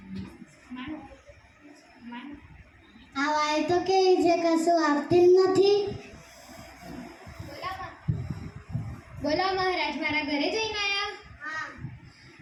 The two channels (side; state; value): both; identical; correlation 1.00